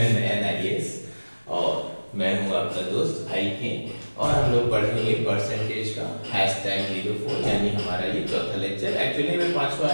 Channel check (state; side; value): inverted; both; correlation -1.00